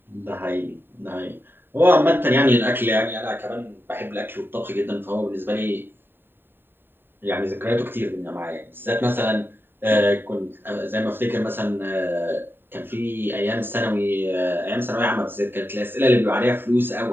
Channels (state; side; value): late; left; 0.099 ms